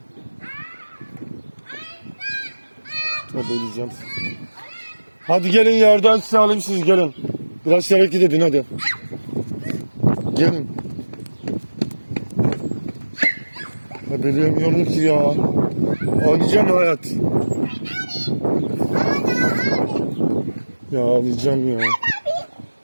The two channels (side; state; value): both; inverted; correlation -1.00